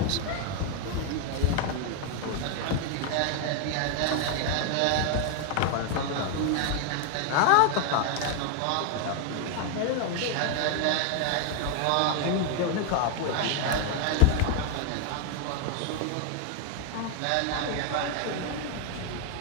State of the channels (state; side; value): different; both; correlation 0.00